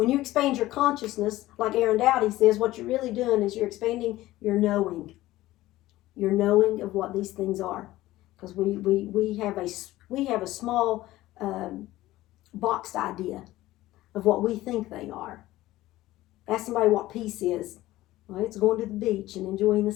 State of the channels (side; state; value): right; quieter; 16.5 dB